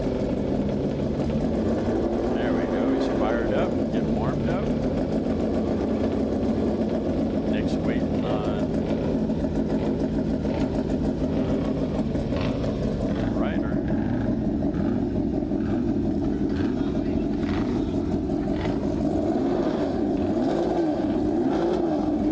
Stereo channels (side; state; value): both; identical; correlation 1.00